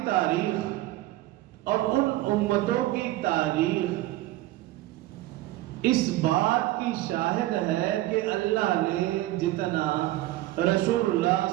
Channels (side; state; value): left; quieter; 16.6 dB